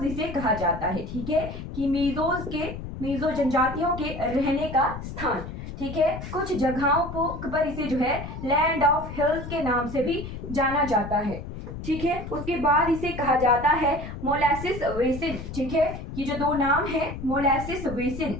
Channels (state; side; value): noise; left; rumble, 9 dB below the sound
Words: इसे कहा जाता है। ठीक है, कि मिजो जनजातियों के रहने का स्थान। ठीक है, कुछ जगहों पर इसे जो है लैंड ऑफ हिल्स के नाम से भी जाना जाता है। ठीक है, उसके बाद इसे कहा जाता है मोलासिस बेसिन। ठीक है, ये जो दो नाम है मोलासिस